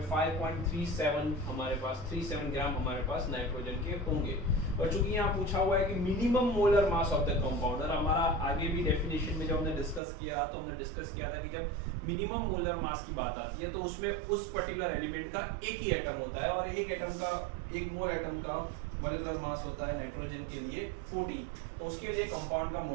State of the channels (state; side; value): drops out; left; at 10.0 s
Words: 5.37 हमारे पास 37 ग्राम हमारे पास नाइट्रोजन के होंगे। और चूंकि यहाँ पूछा हुआ है कि minimum molar mass of the compound, और हमारा आगे भी डेफिनेशन में जब हमने डिस्कस किया तो हमने डिस्कस किया था कि जब मिनिमम मोलर मास की बात आती है तो उसमें उस पर्टिकुलर एलिमेंट का एक ही एटम होता है, और एक मोल एटम का मॉलिक्यूलर मास होता है नाइट्रोजन के लिए 40। तो उसके लिए कंपाउंड का